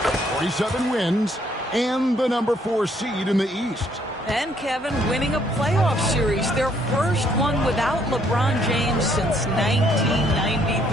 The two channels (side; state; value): both; normal; correlation 0.67